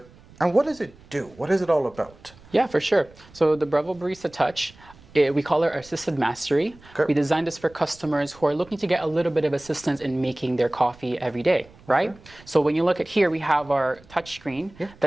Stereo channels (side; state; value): right; noise; rumble, 24 dB below the sound